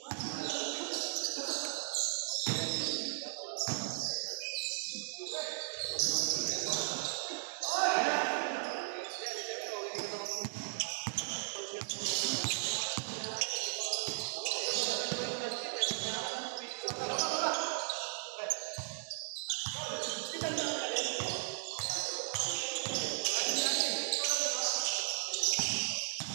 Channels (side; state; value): left; silent; digital silence